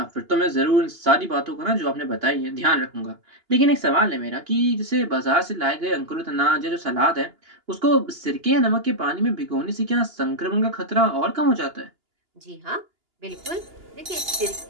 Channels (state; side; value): late; left; 2.9 ms